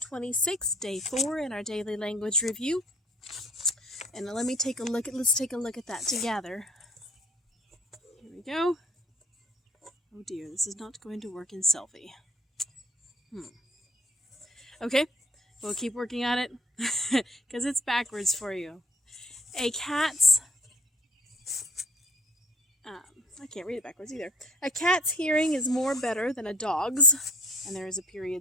26, day 4 in our daily language review. And let's take a look at that together. Here we go. Oh dear, this is not going to work in selfie. Okay, we'll keep working on it because it's backwards for you. I can't read it backwards either. A cat's hearing is more better than a dog's. And there is a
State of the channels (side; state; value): both; normal; correlation 0.52